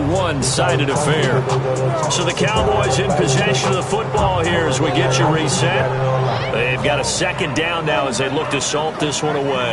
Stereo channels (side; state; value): both; identical; correlation 1.00